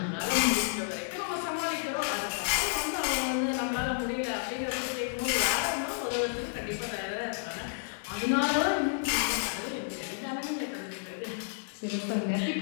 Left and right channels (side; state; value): right; silent; digital silence